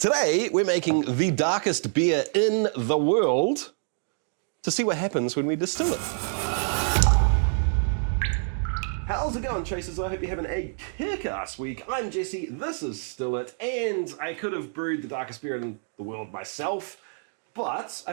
Today, we're making the darkest beer in the world to see what happens when we distill it. How's it going, chasers? I hope you're having a kick-ass week. I'm Jesse, this is Still It, and I could have brewed the darkest beer in the world myself, but I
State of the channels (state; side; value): silent; left; digital silence